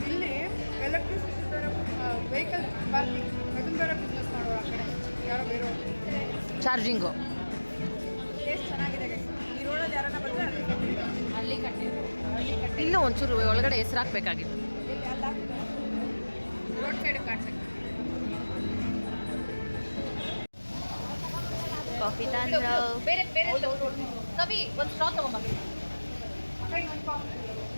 ಇಲ್ಲಿ ಎಲೆಕ್ಟ್ರಿಸಿಟಿ ಬೇರೆ ವೆಹಿಕಲ್ ಪಾರ್ಕಿಂಗ್ ಅದನ್ನ ಬೇರೆ ಬಿಸ್ನೆಸ್ ಮಾಡೋರು ಆ ಕಡೆ ಯಾರೋ ಬೇರೆ ಚಾರ್ಜಿಂಗು. ಟೇಸ್ಟ್ ಚೆನ್ನಾಗಿದೆ ಗೈಸ್. ಈ ರೋಡಲ್ಲಿ ಯಾರನ್ನ ಬಂದರೆ ಅಲ್ಲಿ ಕಟ್ಟಿ ಇಲ್ಲೂ ಒಂಚೂರು ಒಳಗಡೆ ಹೆಸರು ಹಾಕ್ಬೇಕಾಗಿತ್ತು. ರೋಡ್ ಸೈಡ್ ಕಾಣಿಸುತ್ತೆ. ಕಾಫಿ ತಂದ್ರು. ಬೇರೆ ಬೇರೆ ಕವಿ ಒಂದು ಸ್ಟ್ರಾ ತಗೊಂಬ.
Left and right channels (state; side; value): inverted; both; correlation -1.00